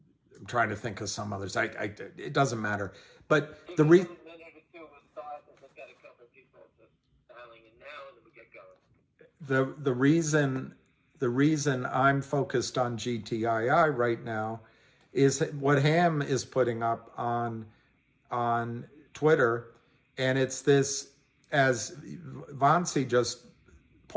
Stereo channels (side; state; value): both; identical; correlation 1.00